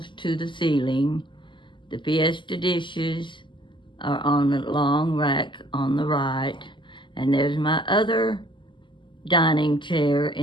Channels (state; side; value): late; right; 0.24 ms